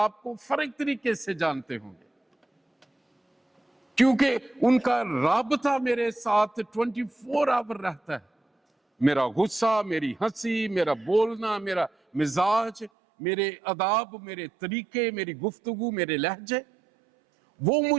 کو فرق طریقے سے جانتے ہوں گے، کیونکہ ان کا رابطہ میرے ساتھ 24 آور رہتا ہے۔ میرا غصہ، میری ہنسی، میرا بولنا، میرا مزاج، میرے آداب، میرے طریقے، میری گفتگو، میرے لہجے، وہ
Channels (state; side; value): drops out; left; at 12.9 s